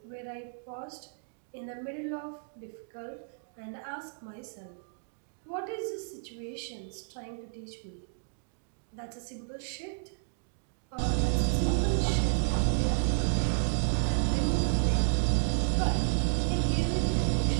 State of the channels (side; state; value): left; silent; digital silence